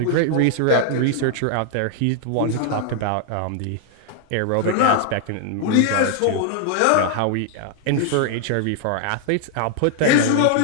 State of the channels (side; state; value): both; different; correlation 0.00